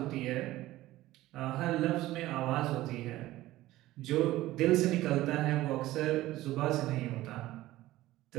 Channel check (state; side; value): quieter; left; 16.3 dB